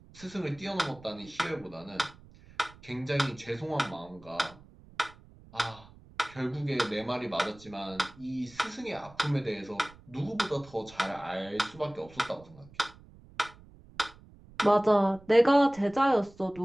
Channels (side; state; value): right; noise; rumble, 23 dB below the sound